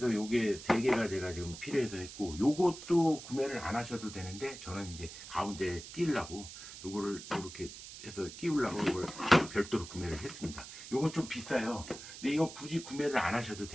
요게 3개가 제가 지금 필요해서 했고 요것도 구매를 안 하셔도 되는데 저는 이제 가운데 끼려고 요거를 이렇게 해서 끼우려고 이걸 별도로 구매를 했습니다. 요건 좀 비싸요. 근데 이거 굳이 구매를 안 하셔도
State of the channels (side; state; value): right; noise; hiss, 13 dB below the sound